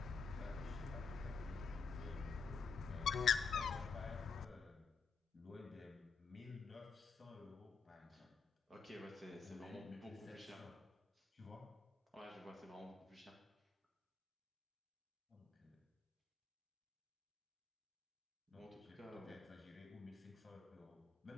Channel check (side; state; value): right; quieter; 5.3 dB